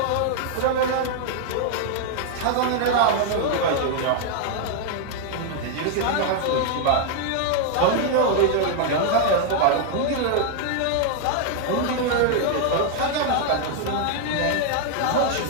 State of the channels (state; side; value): different; both; correlation 0.00